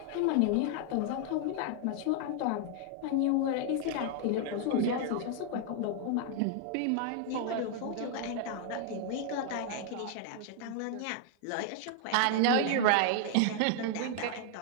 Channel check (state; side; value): different; both; correlation 0.00